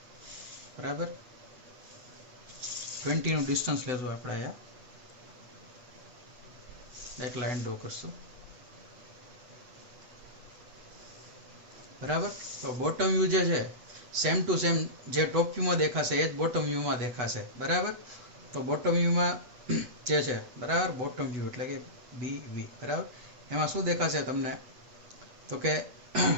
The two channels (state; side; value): late; left; 8.1 ms